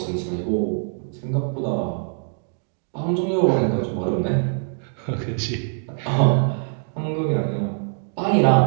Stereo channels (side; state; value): left; silent; digital silence